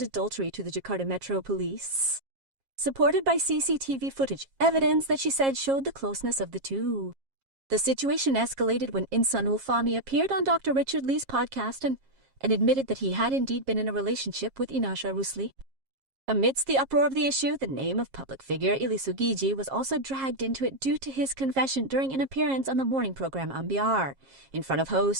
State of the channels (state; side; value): late; left; 7.4 ms